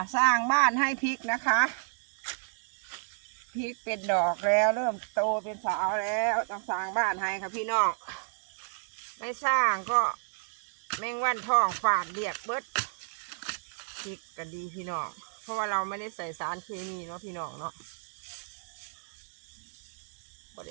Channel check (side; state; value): left; silent; digital silence